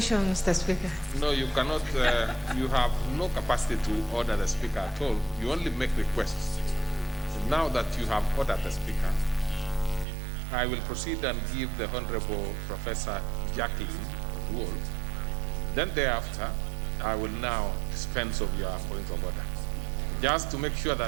Mr. Speaker. No, you cannot. You have no capacity to order the Speaker at all. You only make requests. So now that you have ordered the Speaker, I will proceed and give the Honorable Professor Jacqueline Wool. Then thereafter, I will now dispense of your point of order. Just to make sure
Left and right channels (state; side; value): drops out; left; at 10.1 s